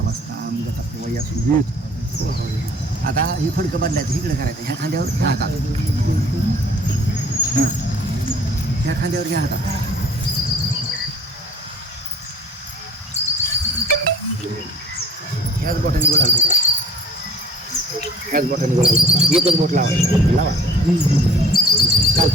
वयासून आता हे फडकं बदलायचं इकडे करायचं ह्या खांद्यावर ह्या हातात ह्या खांद्यावर ह्या हातात ह्याच बोटाने बोलाल ह्याच बोटाने बोलाल एकच बोट लावा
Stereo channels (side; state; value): both; normal; correlation 0.51